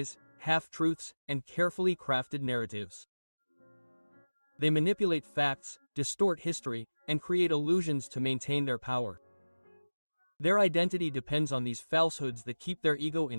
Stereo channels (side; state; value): both; inverted; correlation -1.00